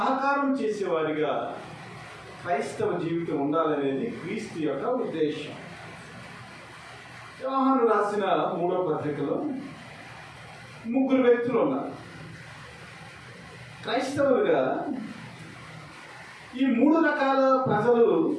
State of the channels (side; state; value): both; identical; correlation 1.00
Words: చేసేవారిగా క్రైస్తవ జీవితం ఉండాలనేది క్రీస్తు యొక్క ఉద్దేశం. యోహాను రాసిన 3వ పత్రికలో 3 వ్యక్తులు ఉన్నారు క్రైస్తవులుగా. ఈ 3 రకాల ప్రజలు